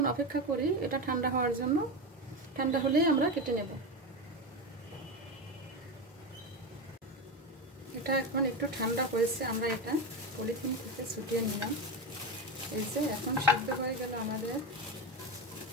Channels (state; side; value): normal; both; correlation 0.18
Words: অপেক্ষা করি এটা ঠান্ডা হওয়ার জন্য। ঠান্ডা হলেই আমরা কেটে নেব। এটা এখন একটু ঠান্ডা হয়েছে, আমরা এটা পলিথিন থেকে ছুটিয়ে নিলাম। এই যে এখন সিদ্ধ হয়ে গেল আমাদের